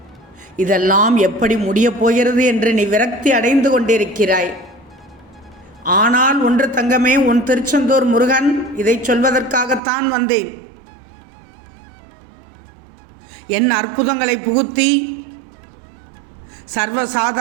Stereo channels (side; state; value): left; drops out; at 9.8 s